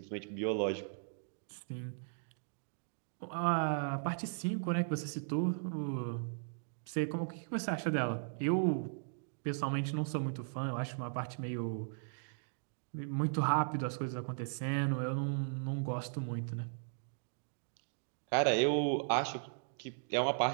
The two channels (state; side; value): silent; left; digital silence